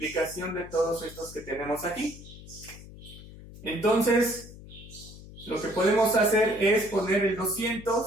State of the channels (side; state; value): left; noise; hum, 17 dB below the sound